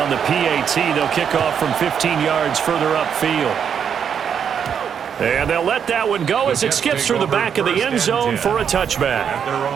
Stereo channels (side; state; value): left; quieter; 7.7 dB